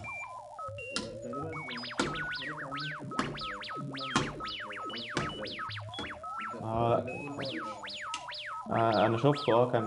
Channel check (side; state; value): both; identical; correlation 1.00